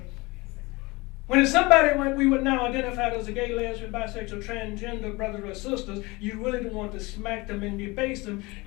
When it's somebody like we would now identify as a gay, lesbian, bisexual, transgender brothers or sisters, you really don't want to smack them and debase them.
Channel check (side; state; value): right; quieter; 23.7 dB